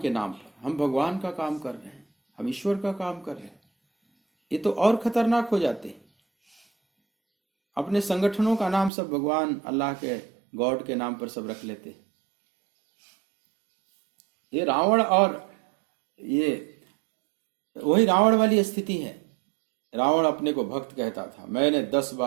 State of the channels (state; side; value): drops out; left; at 8.9 s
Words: के नाम पर हम भगवान का काम कर रहे हैं, हम ईश्वर का काम कर रहे हैं, ये तो और खतरनाक हो जाते हैं। अपने संगठनों का नाम सब भगवान, अल्लाह के, गॉड के नाम पर सब रख लेते हैं। ये रावण, और ये वही रावण वाली स्थिति है। रावण अपने को भक्त कहता था, मैंने 10